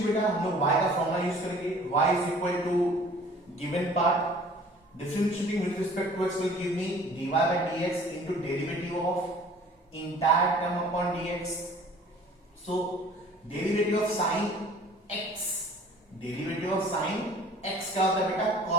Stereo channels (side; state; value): both; normal; correlation 0.50